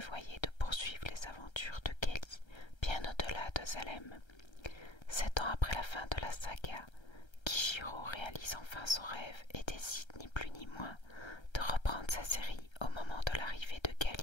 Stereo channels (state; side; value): late; right; 1.3 ms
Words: de poursuivre les aventures de Kelly bien au-delà de Salem. 7 ans après la fin de la saga, Kijiro réalise enfin son rêve et décide ni plus ni moins de reprendre sa série au moment de l'arrivée de